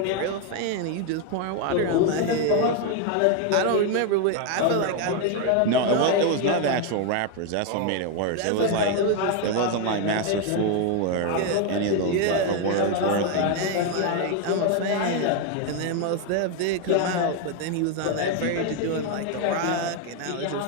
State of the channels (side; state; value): both; different; correlation 0.01